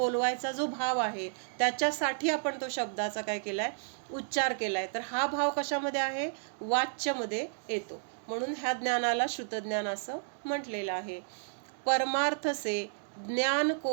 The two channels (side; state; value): left; silent; digital silence